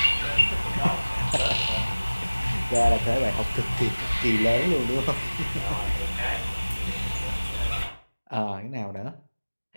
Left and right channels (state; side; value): inverted; both; correlation -1.00